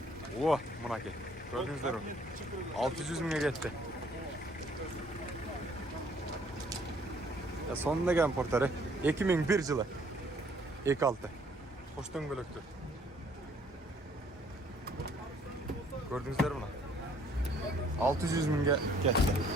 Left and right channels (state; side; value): normal; both; correlation 0.61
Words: О, мынакей. Көрдүңүздөрбү? 600 миңге кетти. Сонун деген портери 2001 жылы. 2.6. Кош дөңгөлөктү. Көрдүңүздөрбү мына? 600 миңге кетти.